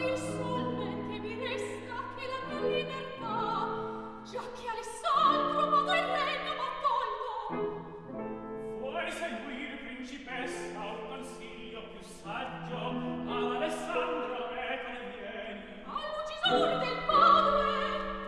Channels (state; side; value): identical; both; correlation 1.00